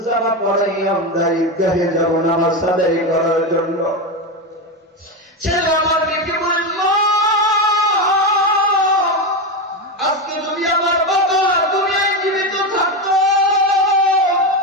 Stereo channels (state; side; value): normal; both; correlation 0.14